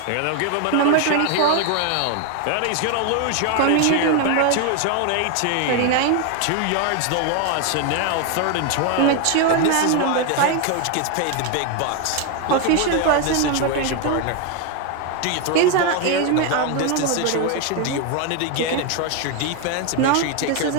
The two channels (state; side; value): different; both; correlation 0.01